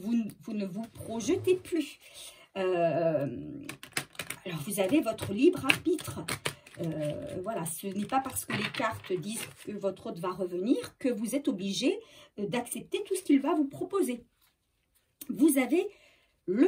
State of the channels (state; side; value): identical; both; correlation 1.00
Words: ne vous projetez plus. Alors, vous avez votre libre arbitre. Voilà, ce n'est pas parce que les cartes disent que votre autre va revenir que vous êtes obligé d'accepter tout ce qu'il va vous proposer. Vous avez